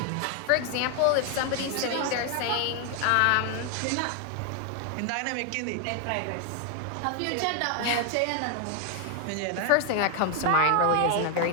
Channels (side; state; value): both; different; correlation 0.00